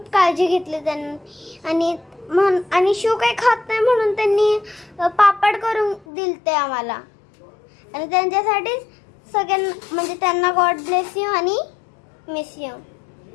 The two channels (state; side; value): drops out; right; at 6.1 s